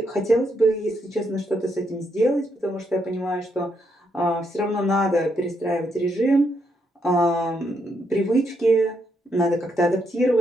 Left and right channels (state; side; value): normal; both; correlation 0.77